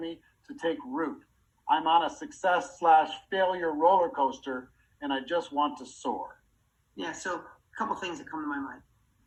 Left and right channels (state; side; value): identical; both; correlation 1.00